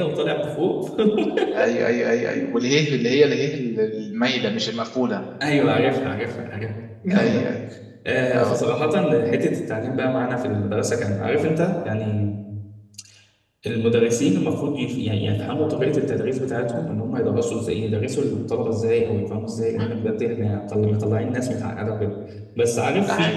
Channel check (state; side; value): identical; both; correlation 1.00